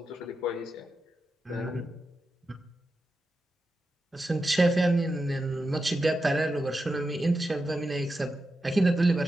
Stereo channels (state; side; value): normal; both; correlation 0.89